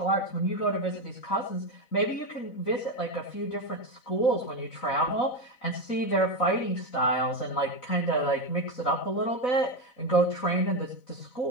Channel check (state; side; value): late; right; 4.0 ms